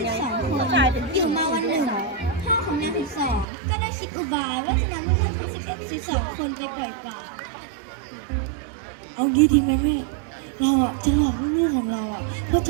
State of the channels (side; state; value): left; drops out; at 3.5 s